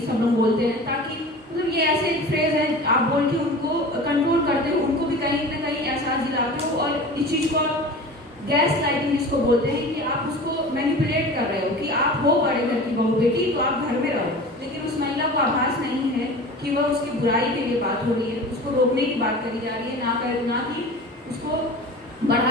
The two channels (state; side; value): normal; both; correlation 0.36